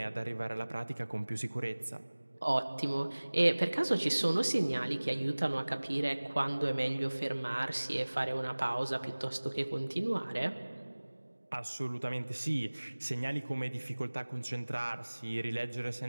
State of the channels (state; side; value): inverted; both; correlation -1.00